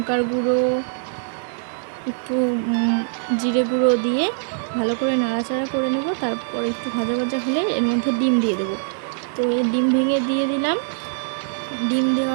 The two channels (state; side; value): silent; left; digital silence